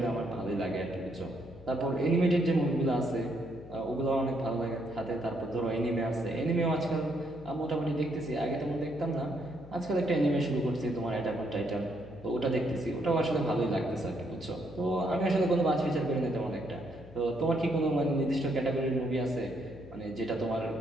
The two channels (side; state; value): left; noise; hum, 19 dB below the sound